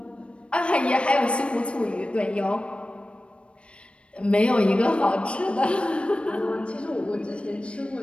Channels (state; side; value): late; right; 0.059 ms